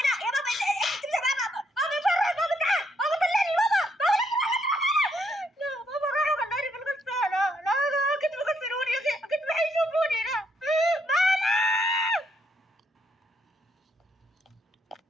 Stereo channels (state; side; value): normal; both; correlation 0.73